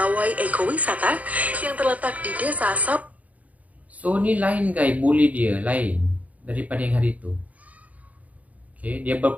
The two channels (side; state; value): left; late; 0.071 ms